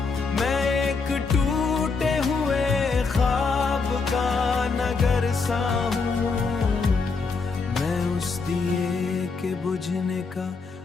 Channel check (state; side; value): quieter; right; 4.5 dB